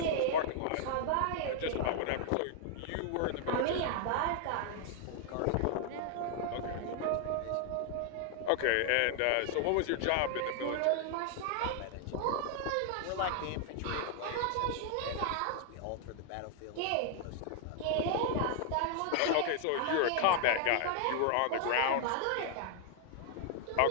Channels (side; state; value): both; different; correlation 0.00